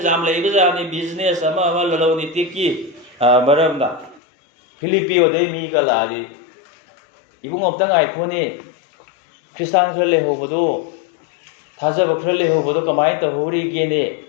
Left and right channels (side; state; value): right; drops out; at 4.2 s